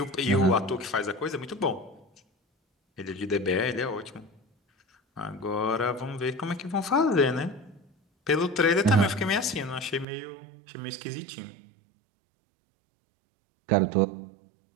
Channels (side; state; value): left; drops out; at 10.1 s